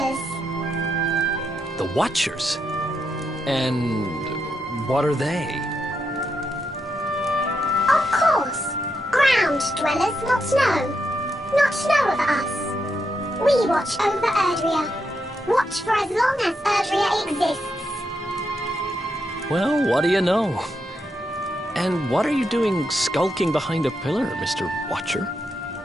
The Watchers? And what are they? Of course. Ground dwellers not know. Not know of us. We watch over Erdrea. Watch for as long as Erdrea exists. Well, what do you know? And what are you doing skulking behind a pillar, Mr. Watcher?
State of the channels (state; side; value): normal; both; correlation 0.82